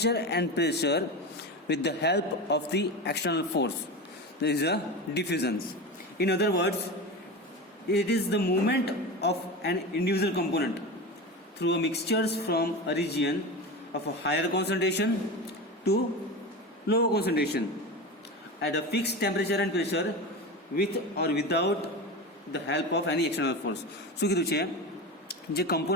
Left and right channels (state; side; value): normal; both; correlation 0.24